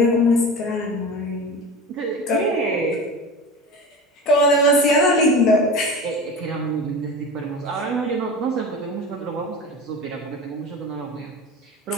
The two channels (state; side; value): normal; both; correlation 0.31